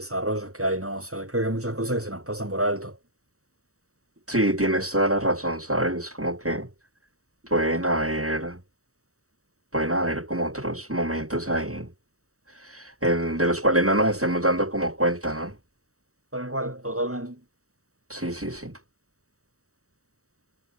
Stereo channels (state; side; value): late; left; 0.65 ms